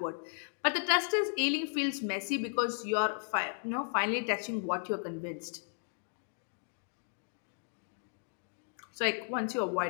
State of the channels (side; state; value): right; silent; digital silence